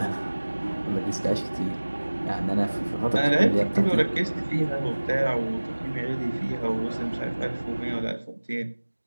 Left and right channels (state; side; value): inverted; both; correlation -1.00